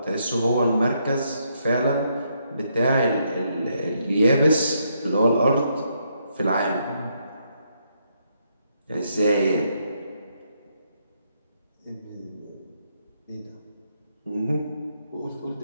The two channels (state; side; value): inverted; both; correlation -0.76